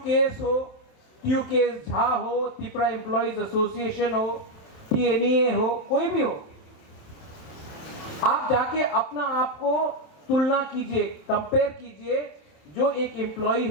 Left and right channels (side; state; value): right; late; 27 ms